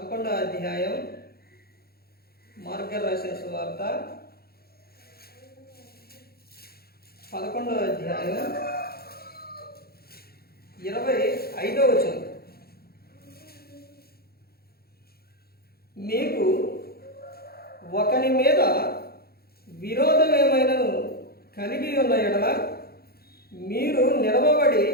అధ్యాయం, మార్గాలు రాసిన సువార్త 11వ అధ్యాయం 25వ వచనం. మీకు ఒకని మీద విరోధం ఏమైనను కలిగి ఉన్న ఎడల మీరు నిలవబడి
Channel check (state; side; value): late; right; 0.45 ms